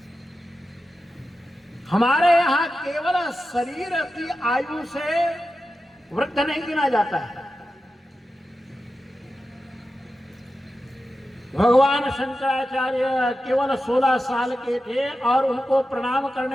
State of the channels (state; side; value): normal; both; correlation 0.92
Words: हमारे यहां केवल शरीर की आयु से वृद्ध नहीं गिना जाता है। भगवान शंकराचार्य केवल 16 साल के थे और उनको प्रणाम